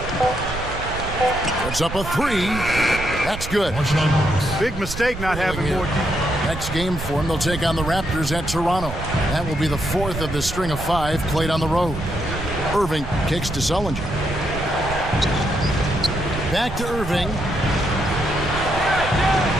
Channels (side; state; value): right; noise; rumble, 8 dB below the sound